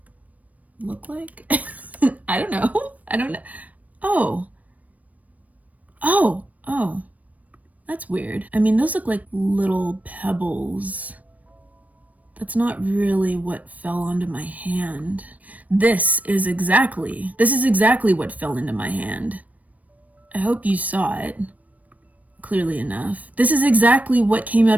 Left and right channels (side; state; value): left; late; 0.071 ms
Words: look like? I don't know. Oh, that's weird. I mean, those look like little pebbles. That's not really what fell onto my hand. This is exactly what fell into my hand. I hope you saw it clearly enough. This is exactly what came